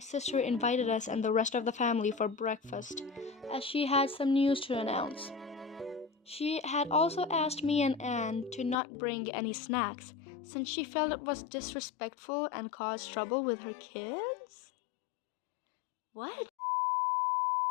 invited us and the rest of the family for breakfast, as she had some news to announce. She had also asked me and Anne to not bring any snacks, since she felt it was disrespectful and caused trouble with her kids? What?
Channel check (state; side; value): drops out; right; at 8.8 s